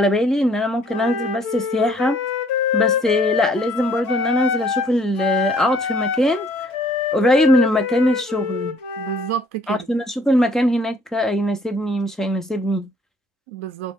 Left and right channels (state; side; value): normal; both; correlation 0.60